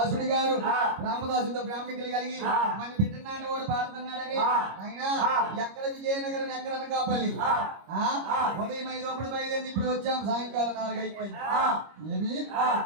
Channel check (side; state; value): left; late; 25 ms